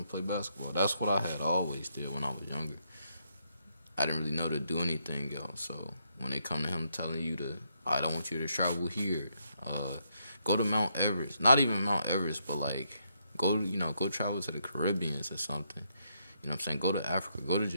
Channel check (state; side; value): inverted; both; correlation -0.77